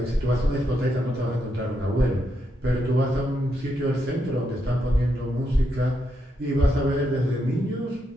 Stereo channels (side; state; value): both; normal; correlation 0.81